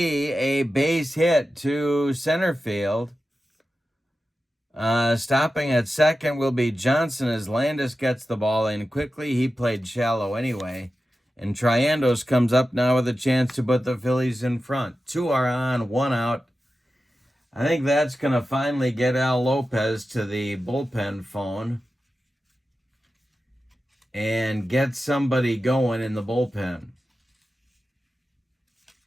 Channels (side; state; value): both; normal; correlation 0.93